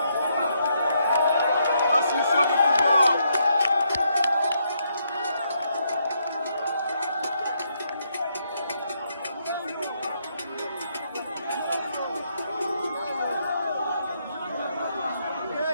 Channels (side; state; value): both; inverted; correlation -0.76